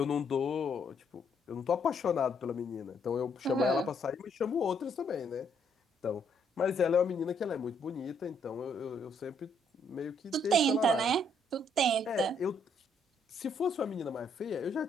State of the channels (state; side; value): normal; both; correlation 0.70